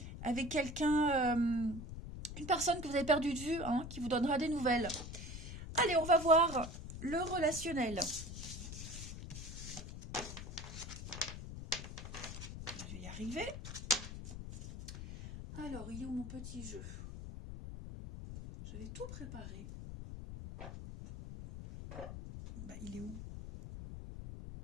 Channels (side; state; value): left; noise; rumble, 9 dB below the sound